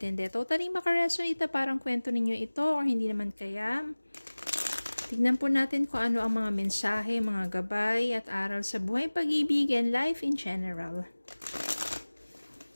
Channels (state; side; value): inverted; both; correlation -1.00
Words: hindi. Totally makaresonate na parang kwento ninyo ito or hindi naman kaya. Tignan po natin kung ano ang mga mensahe, mga gabay at aral sa buhay, pag-ibig, and life in general.